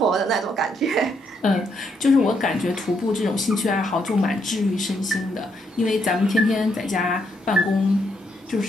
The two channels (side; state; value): both; normal; correlation 0.75